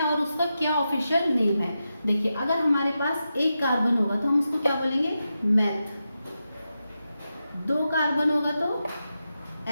और उसका क्या ऑफिशियल नेम है। देखिए, अगर हमारे पास एक कार्बन होगा तो हम उसको क्या बोलेंगे? मेथ। 2 कार्बन होगा तो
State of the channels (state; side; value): inverted; both; correlation -0.89